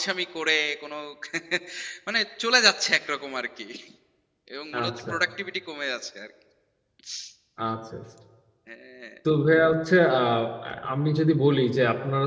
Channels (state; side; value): identical; both; correlation 1.00